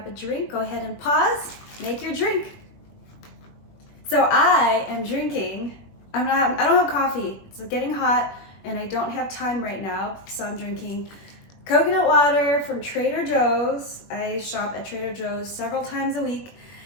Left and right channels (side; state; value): right; late; 21 ms